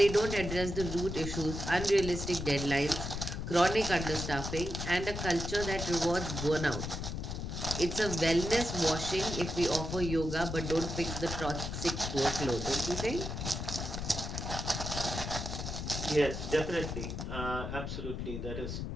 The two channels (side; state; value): left; noise; rumble, 5 dB below the sound